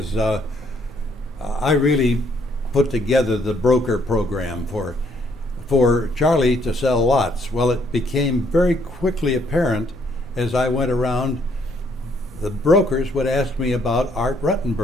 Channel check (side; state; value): both; normal; correlation 0.68